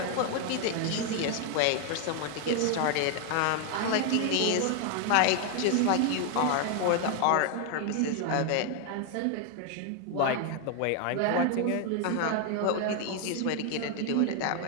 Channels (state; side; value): different; both; correlation 0.00